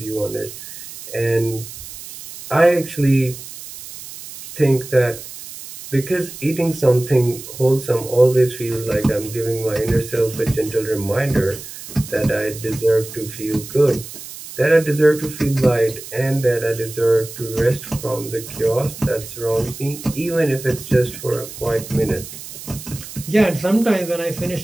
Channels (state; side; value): noise; right; hiss, 13 dB below the sound